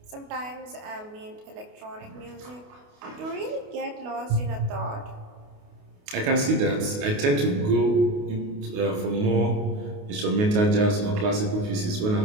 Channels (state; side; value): late; left; 28 ms